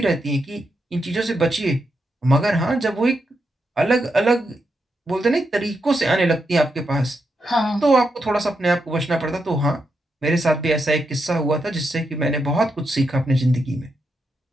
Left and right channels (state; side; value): normal; both; correlation 0.84